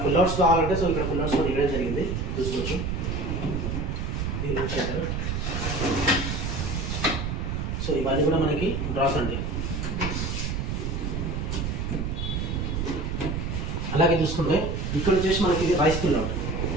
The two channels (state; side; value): noise; right; rumble, 2 dB below the sound